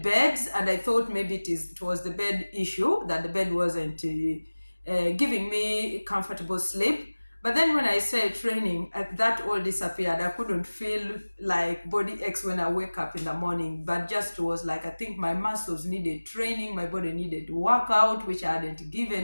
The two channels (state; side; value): inverted; both; correlation -1.00